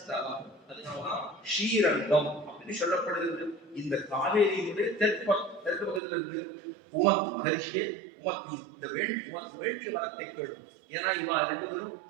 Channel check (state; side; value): drops out; left; at 6.0 s